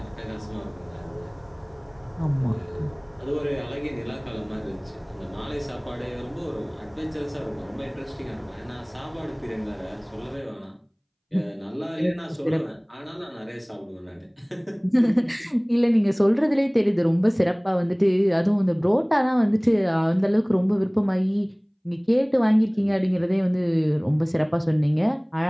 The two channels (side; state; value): both; identical; correlation 1.00